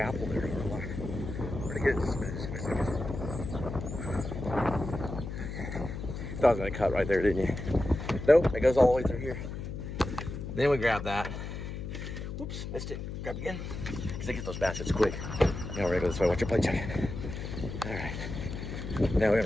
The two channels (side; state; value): left; noise; hum, 7 dB below the sound